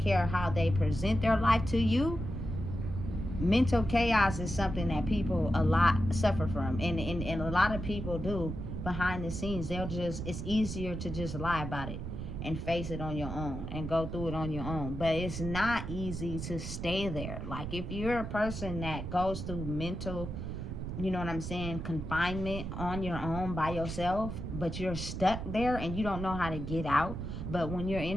how they present their life to you. Mental chaos is something that people a lot suffer from, and a lot of people do behind the scenes. It's easier to just lie about it. and face it on your own and go through it on your own. But it's not easy to stay there. Like, if you're a person that goes through mental, you know what I'm saying, confinement on your own by yourself, but you're stuck there and you don't know how to get out, but when you're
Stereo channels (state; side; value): noise; right; rumble, 6 dB below the sound